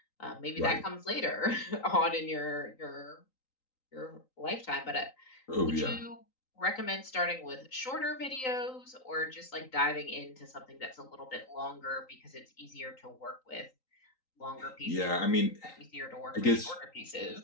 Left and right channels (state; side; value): late; right; 3.9 ms